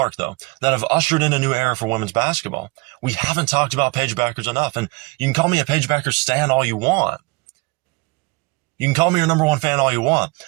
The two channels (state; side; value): quieter; left; 25.6 dB